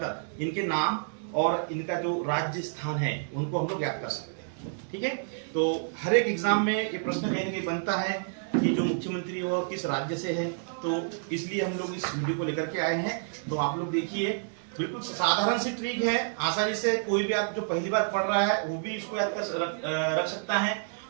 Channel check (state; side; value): silent; left; digital silence